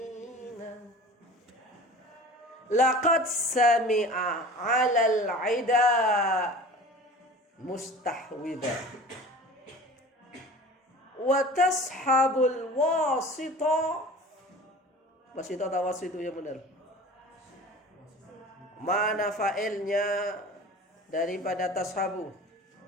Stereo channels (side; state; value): both; normal; correlation 0.40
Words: Laqad sami'a 'alal 'ida mustahwida wa tashabul wasita. Wasita atau wasitu yang benar? Mana fa'ilnya daripada tashabu?